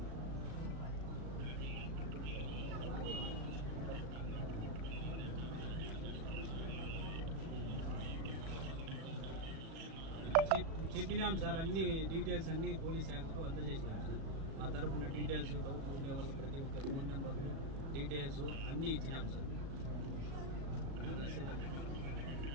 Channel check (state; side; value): late; left; 36 ms